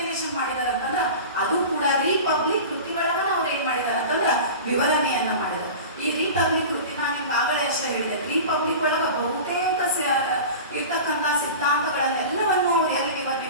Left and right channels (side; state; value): both; inverted; correlation -0.33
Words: ಮಾಡಿದಾರೆ ಅಂತಂದ್ರ ಅದು ಕೂಡ ರಿಪಬ್ಲಿಕ್ ಕೃತಿಗಳನ್ನ ಅವ್ರು ಏನ್ ಮಾಡಿದಾರೆ ಅಂತಂದ್ರ ವಿವರಣೆಯನ್ನ ಮಾಡಿದ್ದಾರೆ. ಈ ರಿಪಬ್ಲಿಕ್ ಕೃತಿ ನಾನು ನಿಮ್ಗೆ ಆಗಲೇ ಅಷ್ಟೇ ಹೇಳಿದೆ. ರಿಪಬ್ಲಿಕ್ ಒಳಗ ಬಹುತೇಕ ಇರ್ತಕ್ಕಂಥ ಸಿದ್ಧಾಂತಗಳನ್ನೆಲ್ಲವನ್ನು ಅವ್ರು ಎಲ್ಲಿ ವಿವರಣೆ